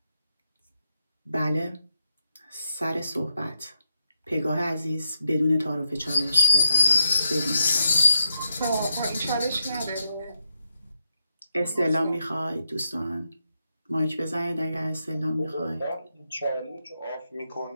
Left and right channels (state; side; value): inverted; both; correlation -0.83